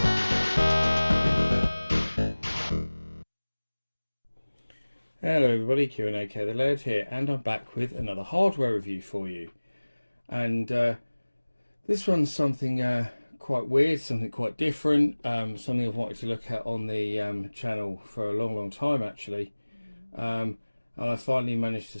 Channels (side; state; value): both; inverted; correlation -1.00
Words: Hello everybody, Q&AK the Laird here, and I'm back with another hardware review for you. And this one's something quite weird, something quite different, something I've wanted to look at on the channel for a long time actually. And I finally managed to